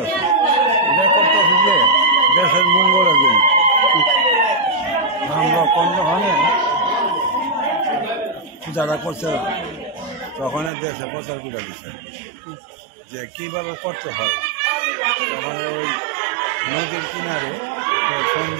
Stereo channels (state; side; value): drops out; left; at 10.7 s